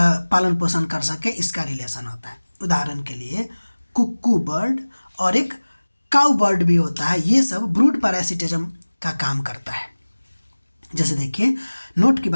पोषण कर सके इसका रिलेशन होता है। उदाहरण के लिए कुक्कू बर्ड और एक काउ बर्ड भी होता है, ये सब ब्रूड पैरासिटिज्म का काम करता है। जैसे देखिए नोट की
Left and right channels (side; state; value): both; inverted; correlation -1.00